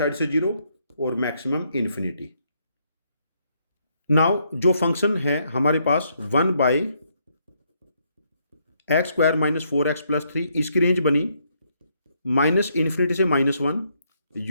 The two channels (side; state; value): both; inverted; correlation -0.74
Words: से 0 और मैक्सिमम इन्फिनिटी। नाउ जो फंक्शन है हमारे पास 1 by x square minus 4x plus 3, इसकी रेंज बनी माइनस इन्फिनिटी से -1